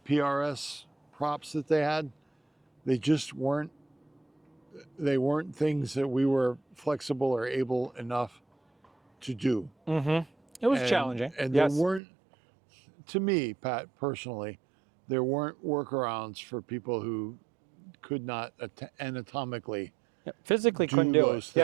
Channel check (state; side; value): drops out; left; at 12.0 s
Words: props that they had. They just weren't. They weren't things that we were flexible or able enough to do. It was challenging. And yes. there weren't, to me, Pat, personally, there weren't workarounds for people who could not anatomically physically do couldn't do those it.